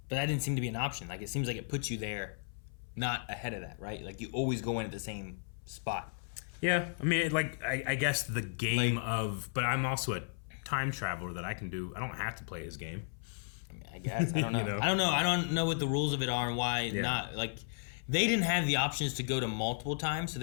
But that didn't seem to be an option. Like, it seems like it puts you there, not ahead of that, right? Like, you always go in at the same spot. Yeah, I mean, like, I guess the game of... But I'm also a time traveler that I can do... I don't have to play his game. I mean, I guess. I don't know. I don't know. I don't know what the rules of it are and why not. Like, they didn't have the options to go to multiple times, so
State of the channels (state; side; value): silent; right; 55 dB below the other